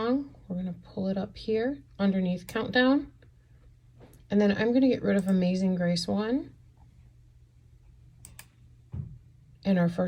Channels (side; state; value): both; identical; correlation 1.00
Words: We're going to pull it up here underneath Countdown. And then I'm going to get rid of Amazing Grace 1. And our